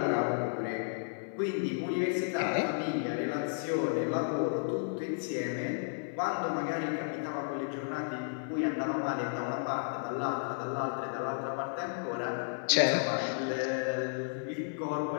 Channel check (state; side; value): silent; right; 56 dB below the other